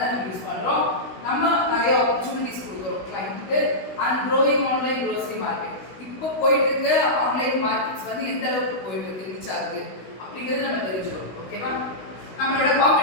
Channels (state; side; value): late; right; 16 ms